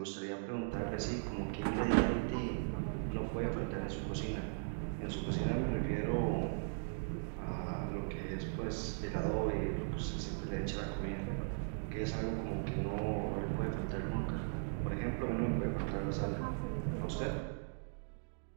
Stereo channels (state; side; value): silent; left; digital silence